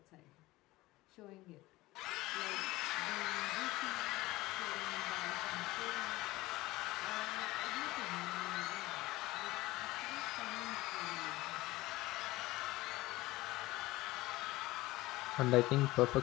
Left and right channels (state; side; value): quieter; right; 19.0 dB